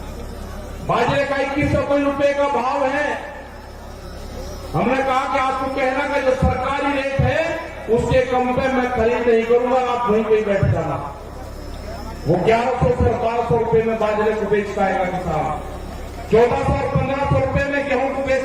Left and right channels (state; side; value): identical; both; correlation 1.00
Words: बाजरे का 2100 रुपए का भाव है। हमने कहा कि आपको कहना कि जो सरकारी रेट है उसके कम पे मैं खरीद नहीं करूंगा, आप वहीं पे बैठ जाना। वो 1100 से 1200 रुपए में बाजरे को बेच पाएगा किसान, 1400 और 1500 रुपए में गेहूं को बेच